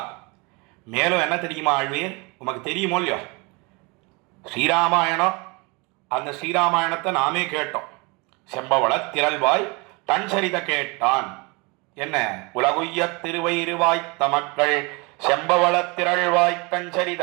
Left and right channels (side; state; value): left; quieter; 28.4 dB